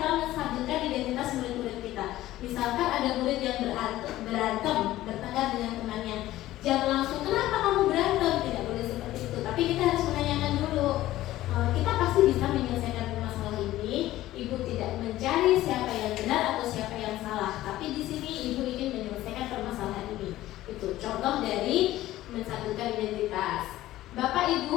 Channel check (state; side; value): quieter; right; 15.3 dB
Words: menstabilkan identitas murid-murid kita. Misalkan ada murid yang berantem, bertengkar dengan temannya. Jangan langsung, kenapa kamu berantem? Tidak boleh seperti itu. Tapi kita harus menanyakan dulu. Kita pasti bisa menyelesaikan masalah ini. Ibu tidak mencari siapa yang benar atau siapa yang salah. Tapi di sini ibu ingin menyelesaikan permasalahan ini. Itu contoh dari menstabilkan identitas. Bapak